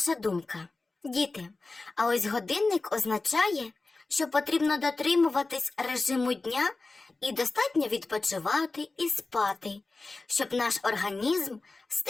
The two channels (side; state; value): right; quieter; 3.5 dB